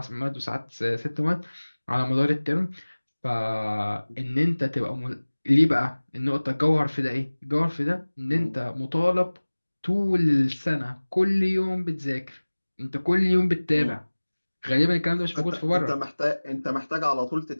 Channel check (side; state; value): both; inverted; correlation -1.00